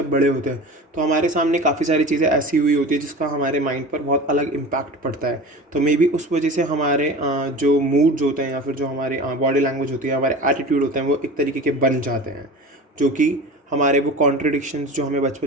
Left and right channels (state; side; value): normal; both; correlation 0.35